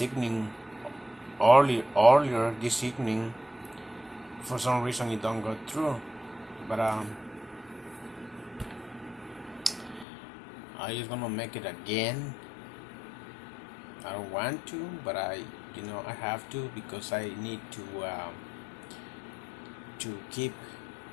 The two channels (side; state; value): right; drops out; at 10.1 s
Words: evening, earlier this evening. For some reason, it don't go through. But I just gonna make it again. I don't want to, but I have to because I need to keep